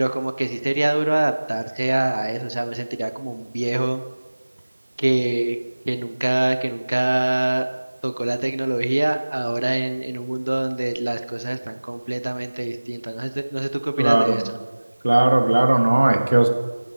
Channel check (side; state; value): both; inverted; correlation -1.00